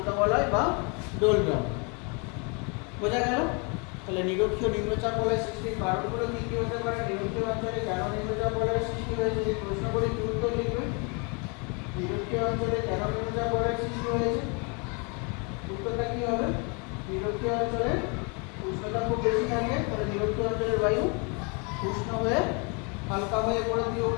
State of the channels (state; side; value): quieter; right; 33.7 dB